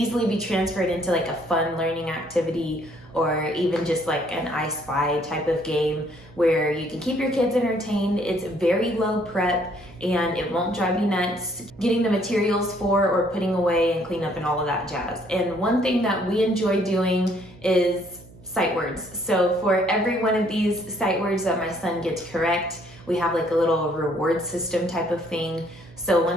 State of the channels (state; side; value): noise; right; hum, 22 dB below the sound